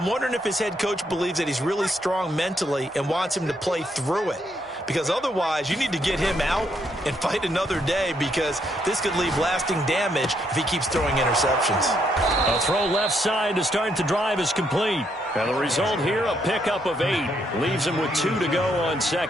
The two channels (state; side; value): normal; both; correlation 0.75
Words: wondering if his head coach believes that he's really strong mentally and wants him to play through it. Because otherwise, you need to get him out and fight another day, because this could leave lasting damage if he keeps throwing interceptions. A throw left side to start the drive is complete. And the result here, a pickup of 8. Leaves him with 2 to go on